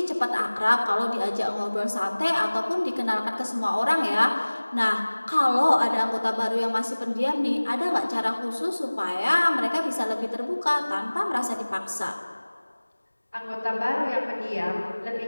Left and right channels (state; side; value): inverted; both; correlation -1.00